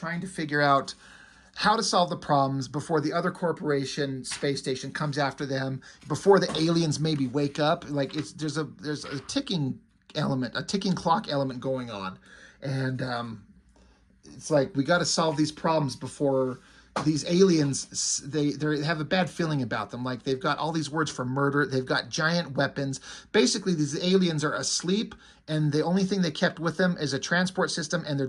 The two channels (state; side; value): identical; both; correlation 1.00